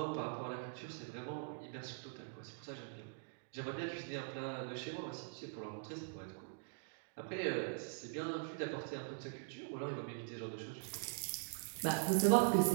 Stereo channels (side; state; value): left; silent; digital silence